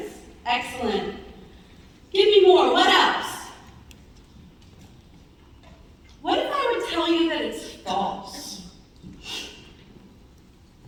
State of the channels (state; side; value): identical; both; correlation 1.00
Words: Excellent. Give me more. What else? What if I would tell you that it's false?